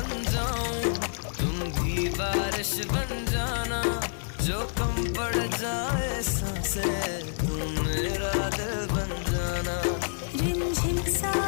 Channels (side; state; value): right; silent; digital silence